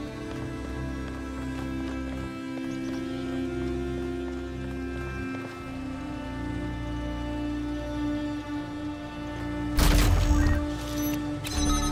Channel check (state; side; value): identical; both; correlation 1.00